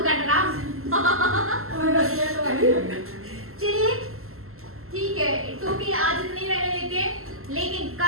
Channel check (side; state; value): left; late; 0.62 ms